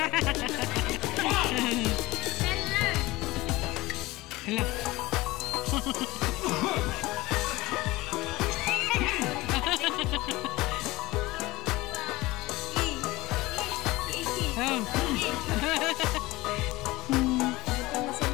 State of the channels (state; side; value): quieter; right; 20.0 dB